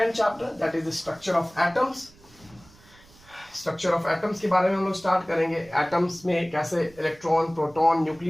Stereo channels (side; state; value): right; noise; rumble, 26 dB below the sound